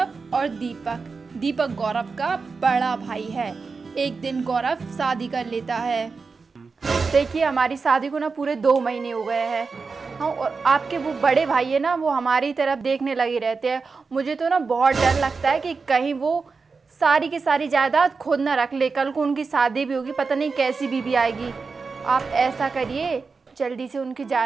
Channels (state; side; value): quieter; left; 4.6 dB